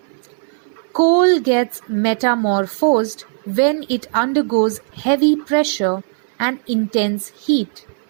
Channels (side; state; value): left; silent; 67 dB below the other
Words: Coal gets metamorphosed when it undergoes heavy pressure and intense heat.